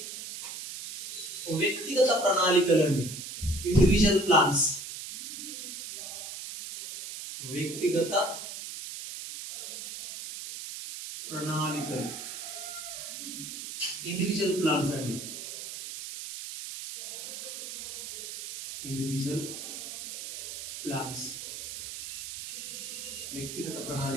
వ్యక్తిగత ప్రణాళికలు అండి, ఇండివిజువల్ ప్లాన్స్. వ్యక్తిగత ప్రణాళికలు, ఇండివిజువల్ ప్లాన్స్ అండి, ఇండివిజువల్ ప్లాన్స్, వ్యక్తిగత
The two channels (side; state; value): right; noise; hiss, 8 dB below the sound